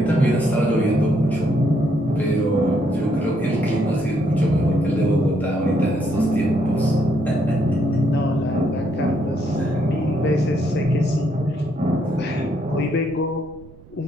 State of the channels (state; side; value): noise; right; rumble, 23 dB below the sound